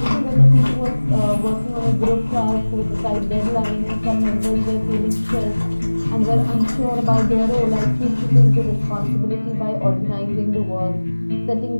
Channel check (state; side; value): inverted; both; correlation -1.00